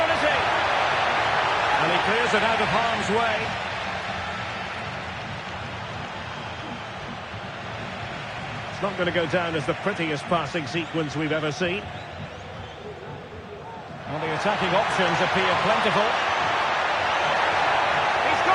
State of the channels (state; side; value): identical; both; correlation 1.00